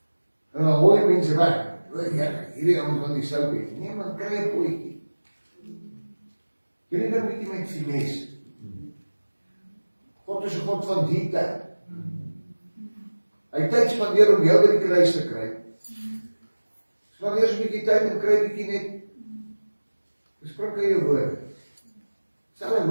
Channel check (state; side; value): inverted; both; correlation -1.00